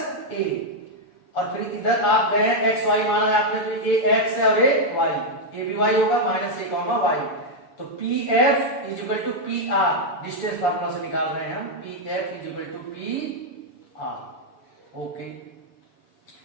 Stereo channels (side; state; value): right; late; 7.0 ms